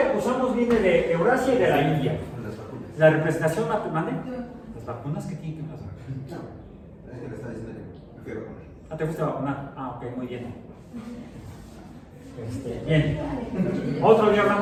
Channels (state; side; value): identical; both; correlation 1.00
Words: que usamos viene de Eurasia y de la India. Las vacunas. La representación matemática. ¿Las vacunas qué tienen que pasar? No, es que le estaba diciendo que me fui a vacunar. Ah, ¿te fuiste a vacunar? Ah, ok, muy bien. Bien. Otro día